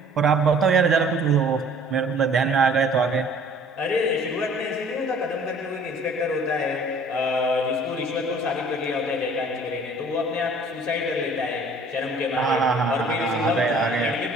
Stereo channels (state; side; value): normal; both; correlation 0.53